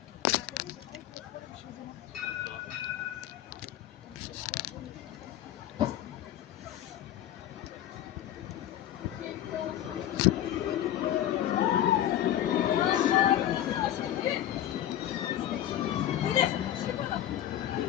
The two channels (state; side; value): quieter; right; 12.0 dB